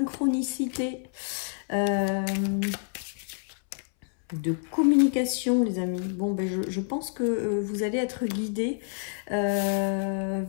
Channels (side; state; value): right; silent; 59 dB below the other